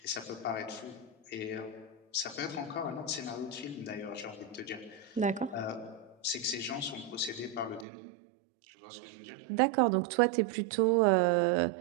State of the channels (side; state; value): left; drops out; at 7.9 s